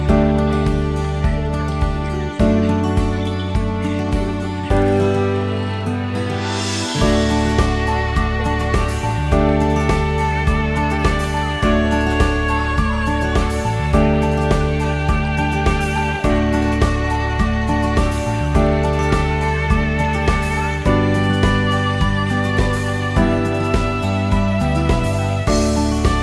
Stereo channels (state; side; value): identical; both; correlation 1.00